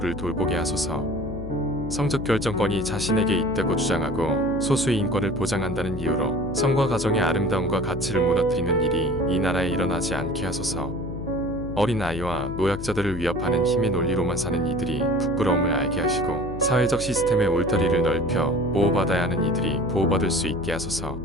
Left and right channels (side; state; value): left; noise; hum, 9 dB below the sound